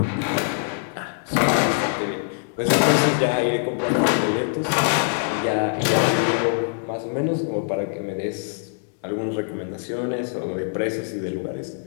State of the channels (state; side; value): silent; right; 63 dB below the other